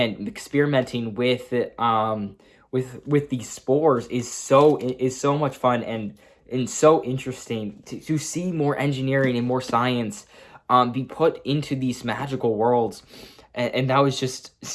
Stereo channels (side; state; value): both; identical; correlation 1.00